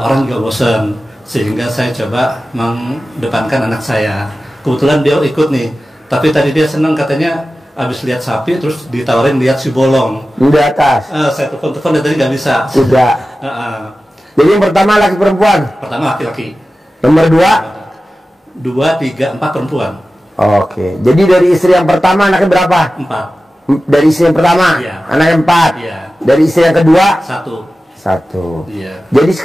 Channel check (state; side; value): normal; both; correlation 0.95